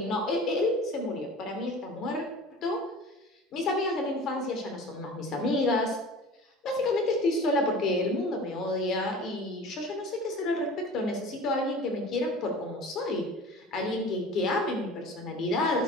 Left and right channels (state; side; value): normal; both; correlation 0.39